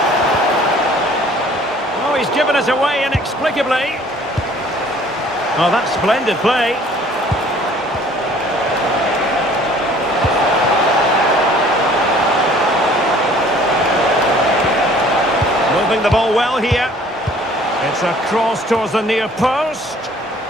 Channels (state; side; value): normal; both; correlation 0.54